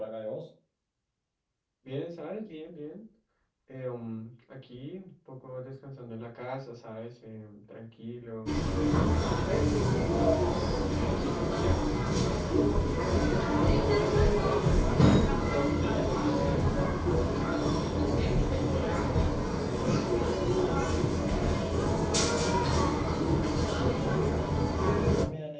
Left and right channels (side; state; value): both; identical; correlation 1.00